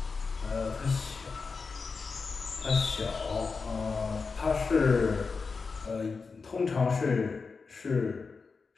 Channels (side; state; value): right; quieter; 4.7 dB